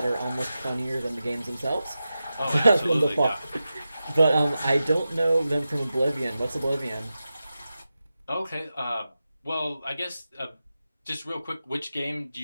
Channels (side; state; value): both; inverted; correlation -0.92